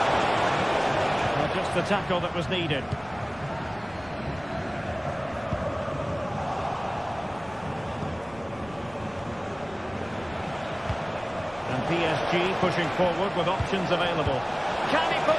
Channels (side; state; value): left; noise; rumble, 22 dB below the sound